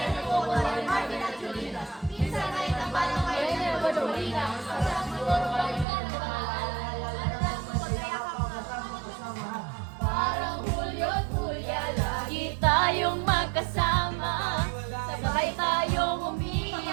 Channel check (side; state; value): left; drops out; at 5.9 s